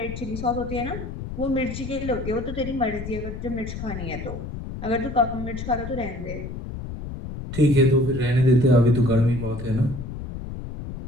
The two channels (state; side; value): noise; left; rumble, 8 dB below the sound